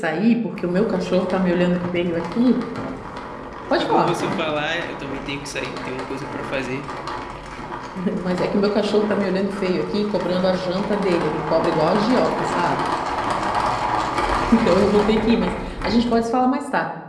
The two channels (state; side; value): identical; both; correlation 1.00